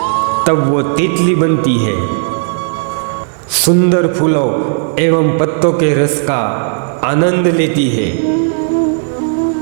तब वो तितली बनती है। सुंदर फूलों एवं पत्तों के रस का आनंद लेती है।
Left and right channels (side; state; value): left; silent; digital silence